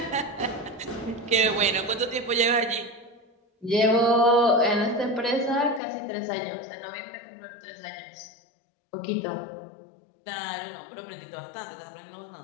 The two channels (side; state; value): right; drops out; at 5.8 s